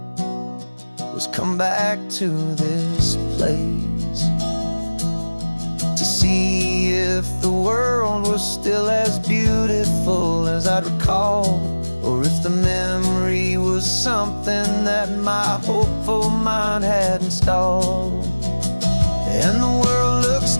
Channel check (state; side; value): inverted; both; correlation -1.00